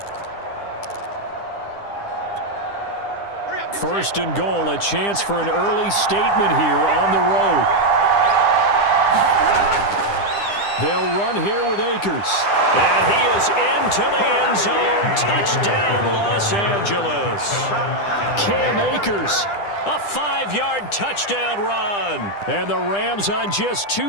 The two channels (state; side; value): late; right; 10 ms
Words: First and goal, a chance for an early statement here on the road. They'll run here with Akers. And he is into the end zone. Touchdown, Los Angeles. Cam Akers, a 5-yard touchdown run. And the Rams on just